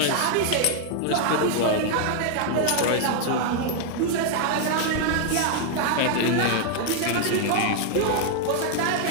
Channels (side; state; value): both; different; correlation 0.00